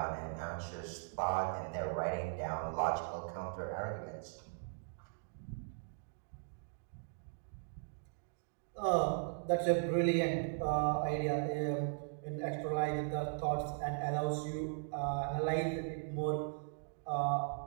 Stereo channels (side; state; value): left; silent; digital silence